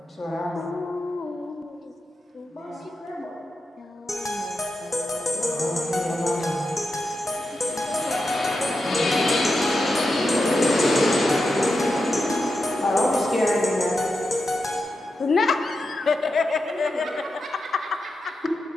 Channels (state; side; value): normal; both; correlation 0.88